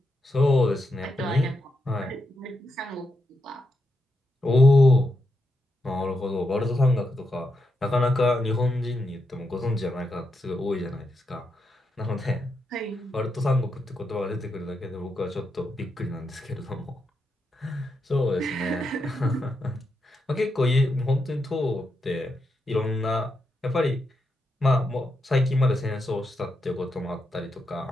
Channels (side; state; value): both; normal; correlation 0.84